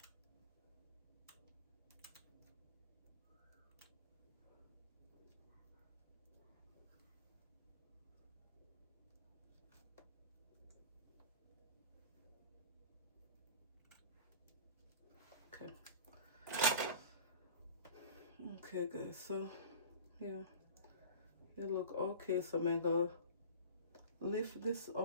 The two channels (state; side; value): inverted; both; correlation -0.39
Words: Okay. Okay, guys. So, yeah. It look okay. So I'm gonna lift this